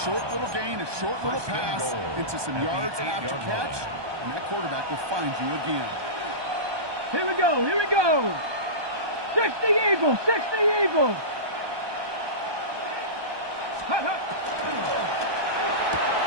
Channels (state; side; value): late; left; 1.2 ms